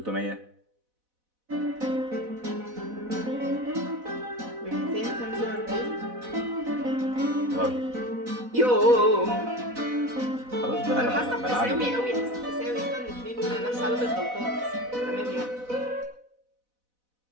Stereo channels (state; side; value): late; left; 4.0 ms